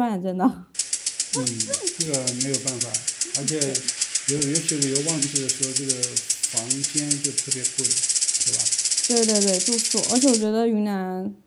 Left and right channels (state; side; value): identical; both; correlation 1.00